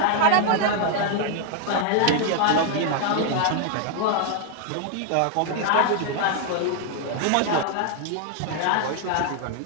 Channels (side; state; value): both; different; correlation 0.00